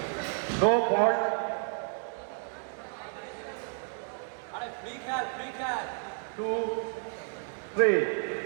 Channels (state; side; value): silent; left; 57 dB below the other